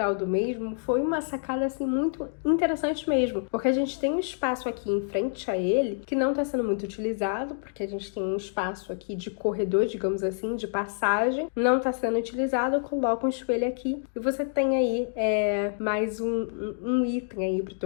do mesmo foi uma sacada assim muito interessante mesmo, porque a gente tem um espaço aqui em frente a ele que não está sendo muito utilizado, porque a gente tem um espaço aqui de corredor, digamos assim, de passagem, não está sendo utilizado, coloca um espelho aqui e você tem aí mais um item aí pro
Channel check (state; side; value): silent; right; digital silence